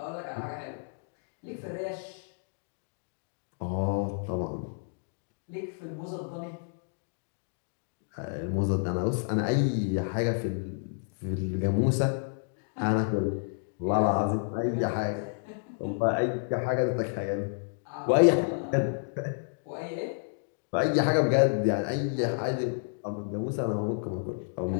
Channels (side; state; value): right; silent; digital silence